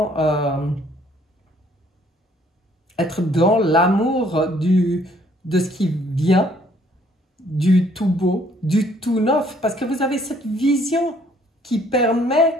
être dans l'amour de ce qui vient, du tout beau, du tout neuf. Parce que vous avez cette vision qui permet,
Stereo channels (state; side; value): normal; both; correlation 0.63